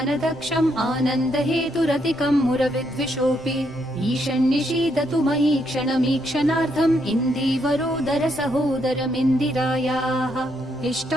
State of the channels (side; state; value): both; normal; correlation 0.75